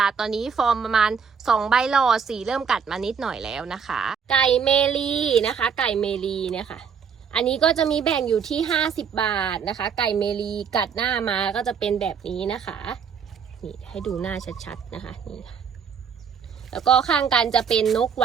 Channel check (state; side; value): quieter; left; 6.7 dB